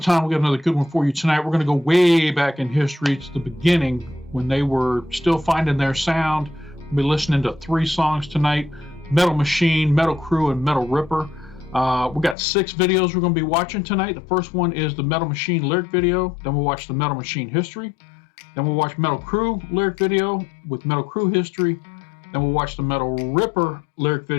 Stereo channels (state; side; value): drops out; right; at 12.4 s